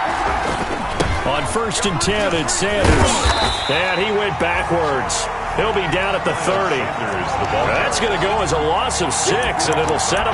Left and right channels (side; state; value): both; identical; correlation 1.00